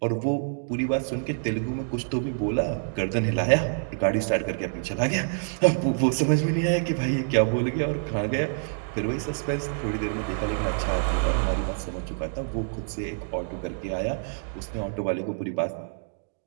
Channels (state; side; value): silent; left; digital silence